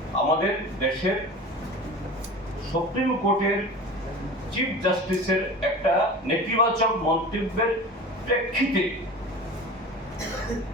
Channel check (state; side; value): normal; both; correlation 0.35